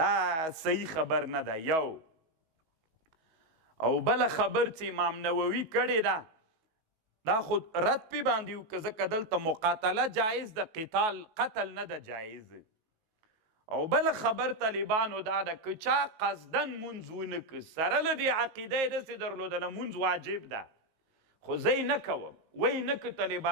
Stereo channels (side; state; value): left; late; 19 ms